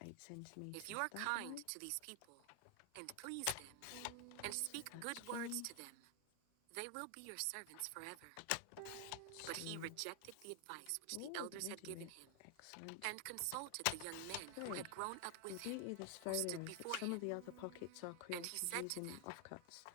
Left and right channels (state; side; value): different; both; correlation 0.00